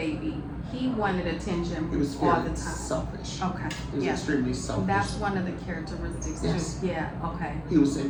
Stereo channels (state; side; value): identical; both; correlation 1.00